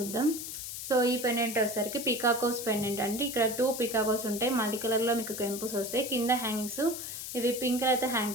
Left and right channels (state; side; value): noise; left; hiss, 7 dB below the sound